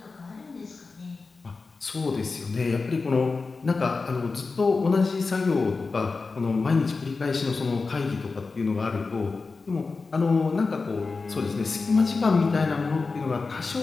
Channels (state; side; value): quieter; right; 4.2 dB